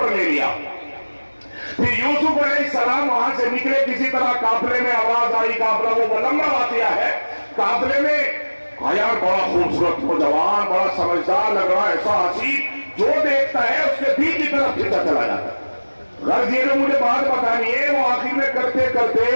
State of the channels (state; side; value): inverted; both; correlation -1.00